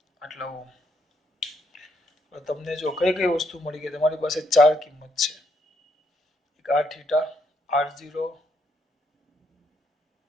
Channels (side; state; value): both; normal; correlation 0.74